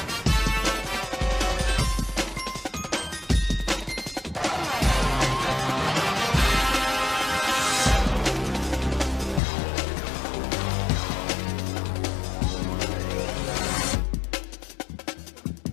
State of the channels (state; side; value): drops out; right; at 9.4 s